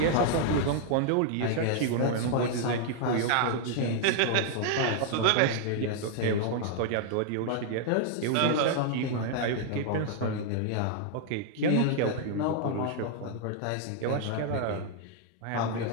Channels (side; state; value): both; different; correlation 0.00